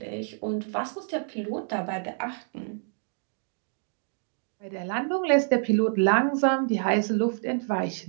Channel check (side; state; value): left; silent; 60 dB below the other